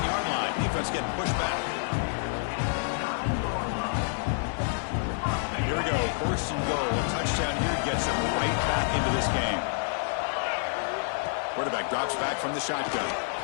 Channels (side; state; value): right; silent; 59 dB below the other